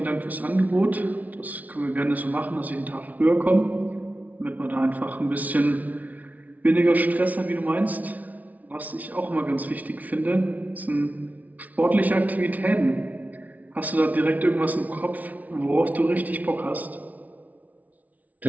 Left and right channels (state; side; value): late; left; 0.073 ms